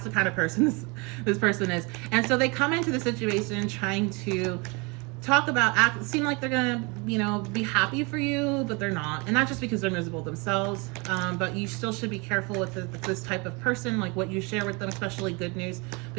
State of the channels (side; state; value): left; quieter; 29.1 dB